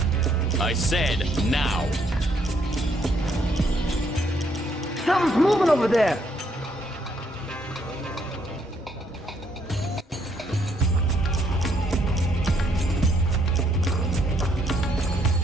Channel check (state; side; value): normal; both; correlation 0.71